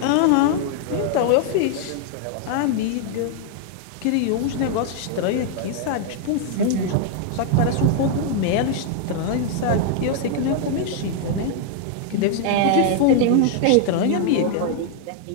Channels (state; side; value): different; both; correlation 0.00